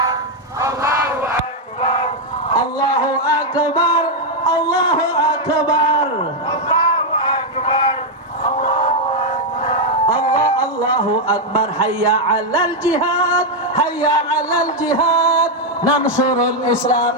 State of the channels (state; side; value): normal; both; correlation 0.01